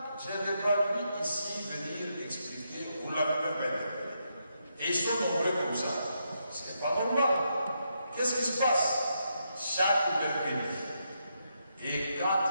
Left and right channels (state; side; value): inverted; both; correlation -0.81